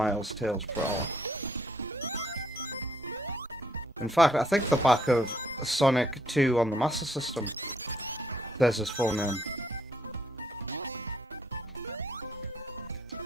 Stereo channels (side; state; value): both; normal; correlation 0.68